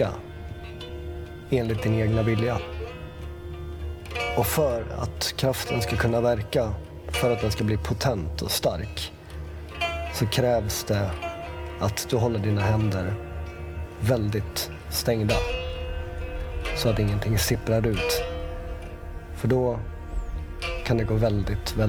enligt din egna vilja. Och för att kraften ska kunna verka, för att den ska bli potent och stark, så krävs det att du håller dina händer väldigt stängda så att ingenting sipprar ut. För då kan det gå väldigt,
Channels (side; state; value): both; identical; correlation 1.00